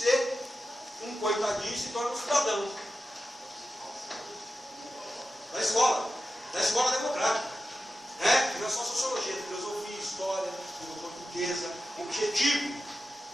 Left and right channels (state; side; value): normal; both; correlation 0.92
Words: um coitadinho e se torne um cidadão. Da escola democrática. Né? Não é só sociologia, filosofia, história, língua portuguesa. O objetivo